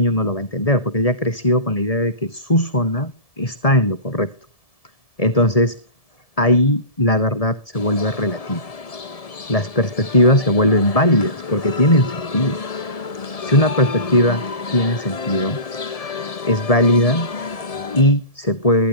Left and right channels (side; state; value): right; late; 1.7 ms